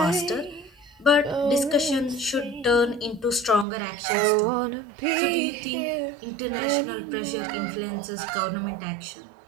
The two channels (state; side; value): drops out; left; at 3.7 s